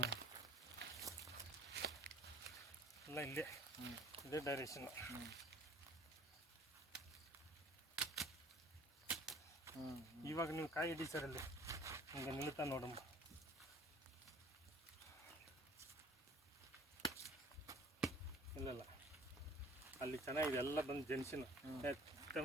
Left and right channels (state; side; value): normal; both; correlation 0.51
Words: ಎಲ್ಲ ಇಲ್ಲೇ ಇದೇ ಡೈರೆಕ್ಷನ್ನು. ಇವಾಗ ನೀವು ಕಾಯಿ ಹಿಡಿ ಸರ್, ಅಲ್ಲಿ ಹಿಂಗೆ ನಿಲ್ತಾ ನೋಡಮ್ಮ. ಇಲ್ಲಲ್ಲ, ಅಲ್ಲಿ ಚೆನ್ನಾಗಿದೆ, ಎಲ್ಲ ಬಂದು ಜೆನ್ಸಿನ